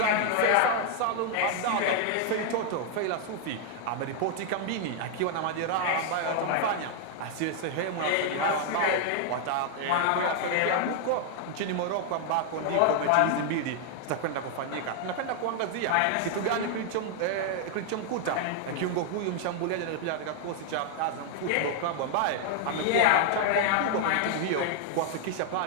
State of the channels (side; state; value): both; different; correlation 0.00